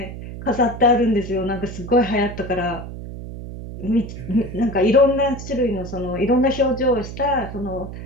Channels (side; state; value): right; noise; hum, 10 dB below the sound